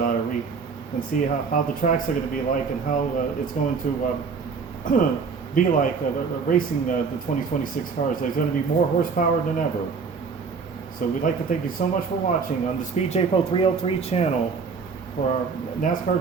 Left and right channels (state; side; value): quieter; left; 5.2 dB